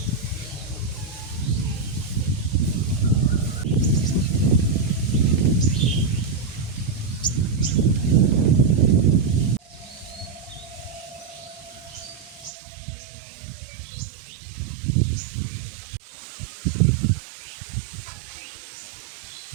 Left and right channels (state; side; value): drops out; left; at 12.5 s